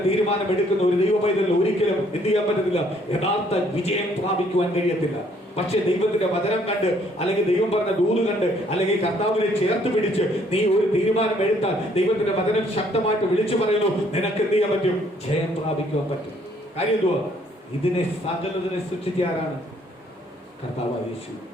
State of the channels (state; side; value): normal; both; correlation 0.64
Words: തീരുമാനമെടുക്കുന്ന ഒരു ദൈവ പൈതലിന് ഒരിക്കലും എന്ത് ചെയ്യാൻ പറ്റത്തില്ല? യഥാർത്ഥ വിജയം പ്രാപിക്കുവാൻ കഴിയത്തില്ല. പക്ഷെ ദൈവത്തിന്റെ വചനം കണ്ട്, അല്ലെങ്കിൽ ദൈവം പറഞ്ഞ ദൂത് കണ്ട്, അല്ലെങ്കിൽ കർത്താവിനെ ചേർത്ത് പിടിച്ച് നീ ഒരു തീരുമാനം എടുത്താൽ ദൈവത്തിന്റെ വചനം ശക്തമായിട്ട് വിളിച്ചു പറയുന്നു, നിനക്ക് എന്ത് ചെയ്യാൻ പറ്റും? ജയം പ്രാപിക്കുവാൻ പറ്റും. കാര്യം എന്തുവാ? ഇതിനെ സകലതിനെ സൃഷ്ടിച്ച ആരാണ്? കർത്താവായ യേശു.